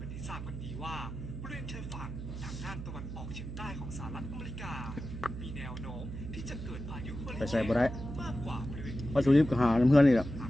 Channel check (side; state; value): right; noise; hum, 8 dB below the sound